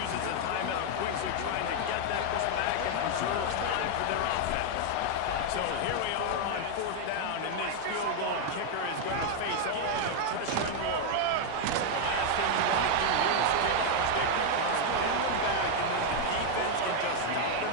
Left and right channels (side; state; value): both; different; correlation 0.00